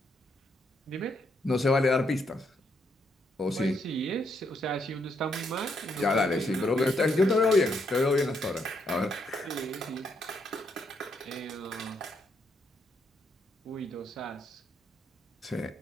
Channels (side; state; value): both; normal; correlation 0.76